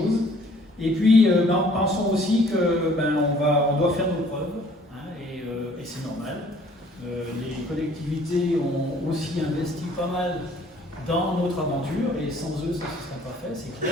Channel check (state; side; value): normal; both; correlation 0.57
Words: Et puis, pensons aussi qu'on doit faire nos preuves, et c'est normal. Les collectivités ont aussi investi pas mal dans notre aventure, et sans eux, ça ne serait pas fait, c'est